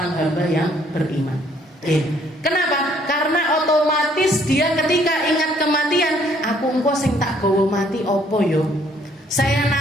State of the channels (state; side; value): normal; both; correlation 0.64